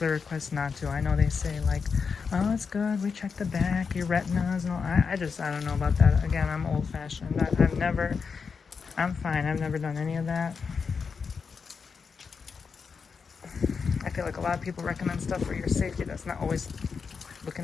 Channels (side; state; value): right; quieter; 5.5 dB